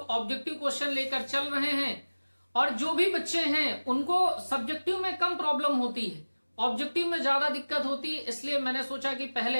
ऑब्जेक्टिव क्वेश्चन लेकर चल रहे हैं और जो भी बच्चे हैं उनको सब्जेक्टिव में कम प्रॉब्लम होती है, ऑब्जेक्टिव में ज्यादा दिक्कत होती है। इसलिए मैंने सोचा कि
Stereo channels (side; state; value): both; inverted; correlation -1.00